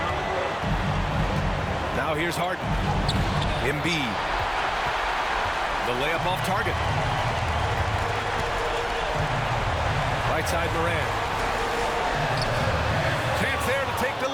Now here's Harden. Embiid. The layup off target. Right side Morant. Chance there to take the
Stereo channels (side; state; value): both; identical; correlation 1.00